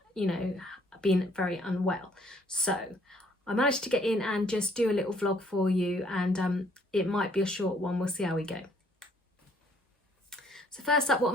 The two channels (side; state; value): both; normal; correlation 0.63